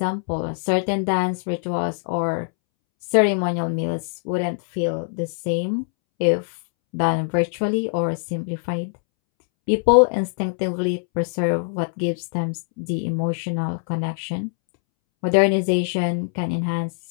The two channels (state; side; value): silent; right; 64 dB below the other